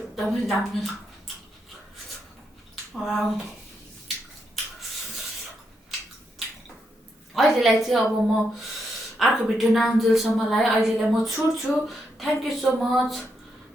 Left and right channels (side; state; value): both; normal; correlation 0.81